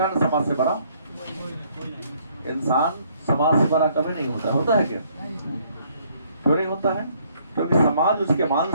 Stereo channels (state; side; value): inverted; both; correlation -0.65